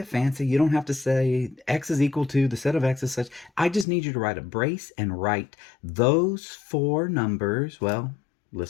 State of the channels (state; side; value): drops out; right; at 3.9 s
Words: fancy. You don't have to say x is equal to the set of x is such. I just need you to write a brace and write those 4 numbers. Well,